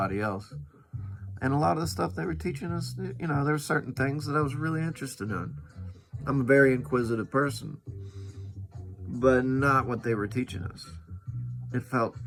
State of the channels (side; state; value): both; identical; correlation 1.00